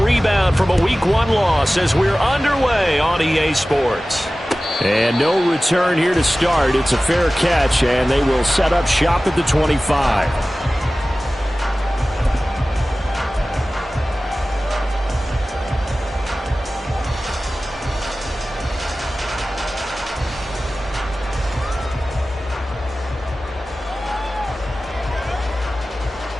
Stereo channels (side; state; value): both; normal; correlation 0.96